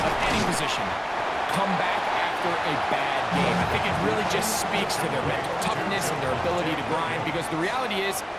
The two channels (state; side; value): identical; both; correlation 1.00